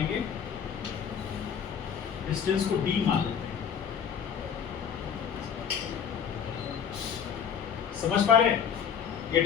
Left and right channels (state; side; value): quieter; right; 7.7 dB